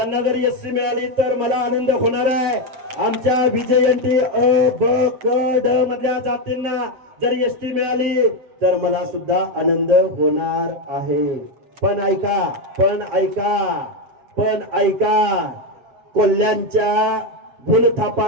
जर एससी मिळाली तर मला आनंद होणार आहे. आमच्या विजयंती अ ब क ड मधल्या जातींना जर एसटी मिळाली तर मला सुद्धा आनंद होणार आहे. पण ऐका कोल्ह्यांच्या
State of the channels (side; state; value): left; late; 7.3 ms